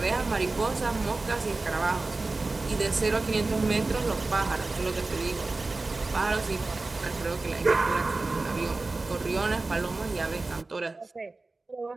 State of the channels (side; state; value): left; quieter; 3.4 dB